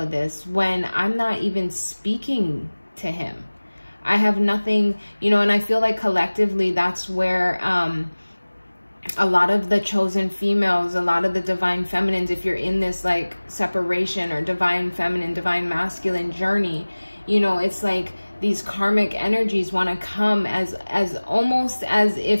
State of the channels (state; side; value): inverted; both; correlation -1.00